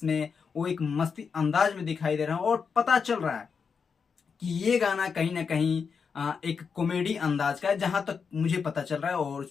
वो एक मस्ती अंदाज में दिखाई दे रहा है, और पता चल रहा है कि ये गाना कहीं ना कहीं एक कॉमेडी अंदाज का है, जहां तक मुझे पता चल रहा है, और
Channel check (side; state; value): right; quieter; 5.9 dB